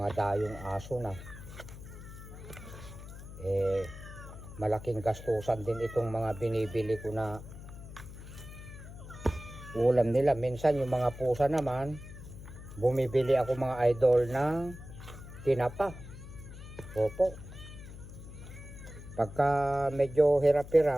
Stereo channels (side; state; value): left; noise; hum, 14 dB below the sound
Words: dayong aso na. Malaking gastusan din itong mga binibili ko na ulam nila. Minsan yung mga pusa naman, bumibili ako mga idol ng tinapa. Opo. Pagka medyo